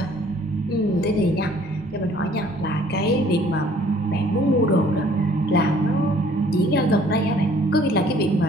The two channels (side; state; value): both; normal; correlation 0.58